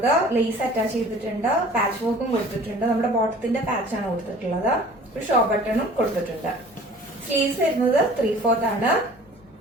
ലേസ് അറ്റാച്ച് ചെയ്തിട്ടുണ്ട്. പാച്ച് വർക്കും കൊടുത്തിട്ടുണ്ട്. നമ്മുടെ ബോട്ടത്തിന്റെ പാച്ച് ആണ് കൊടുത്തിട്ടുള്ളത്. ഒരു ഷോ ബട്ടണും കൊടുത്തിട്ടുണ്ട്. സ്ലീവ്സ് വരുന്നത് 3/4 ആണ്.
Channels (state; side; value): normal; both; correlation 0.47